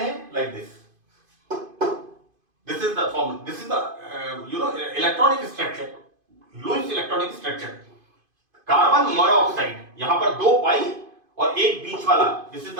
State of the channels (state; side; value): late; left; 2.5 ms